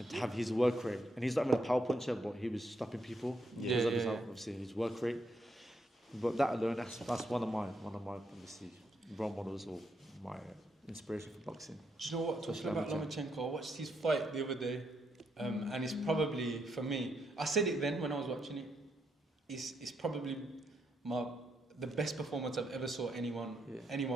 to have his work rate, and he's not even a power puncher, but he was stopping people because of his obviously his work rate. But that alone, that's one of my obviously role models or my inspiration for boxing. Do you know what? Talking about Lomachenko, I watched his fight the other day, and it's probably for me. I said it then when I was watching it. It's probably the best performance I've ever saw anyone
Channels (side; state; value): both; normal; correlation 0.78